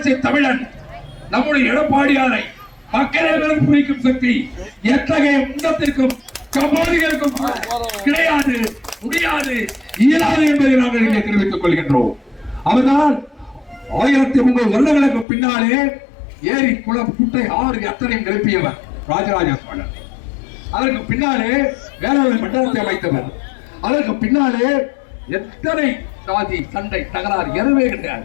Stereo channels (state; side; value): drops out; right; at 15.2 s